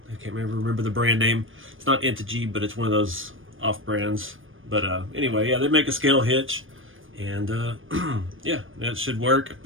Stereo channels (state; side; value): late; left; 0.58 ms